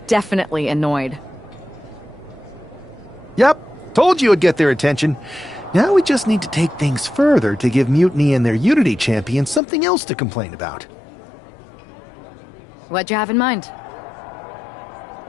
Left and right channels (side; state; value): right; drops out; at 9.6 s